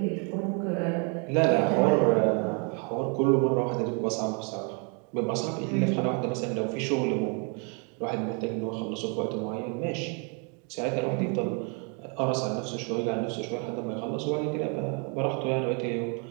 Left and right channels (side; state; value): left; quieter; 37.1 dB